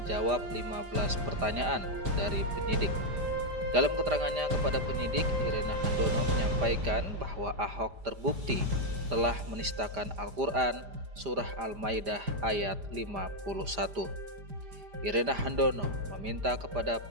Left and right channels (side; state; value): left; late; 5.0 ms